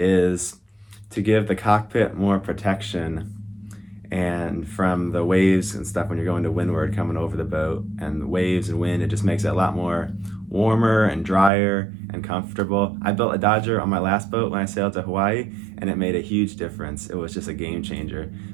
to give the cockpit more protection and from the waves and stuff when you're going to windward coming over the boat, and the waves and wind, it just makes it a lot more warmer and drier and comfortable. I built a Dodger on my last boat when I sailed to Hawaii, and it made a huge difference. It was just a game changer.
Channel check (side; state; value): left; drops out; at 11.5 s